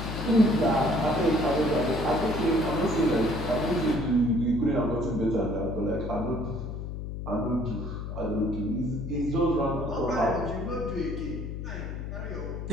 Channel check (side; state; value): left; noise; hum, 6 dB below the sound